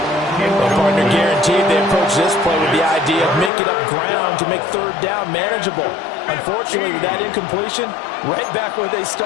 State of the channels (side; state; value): right; drops out; at 3.5 s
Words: Well, partner, guaranteed they approach this play with the idea of making up ground to make 3rd down manageable. Unfortunately, with that incompletion, right back where they